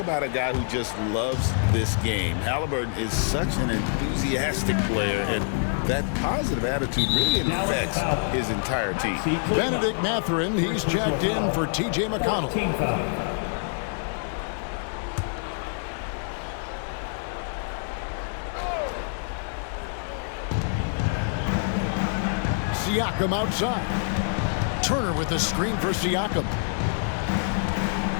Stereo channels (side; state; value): right; silent; digital silence